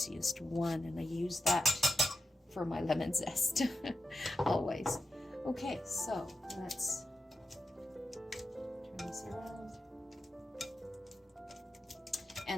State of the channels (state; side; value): normal; both; correlation 0.89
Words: one, and I use that for my lemon zest. Always. Okay, so let's turn this around.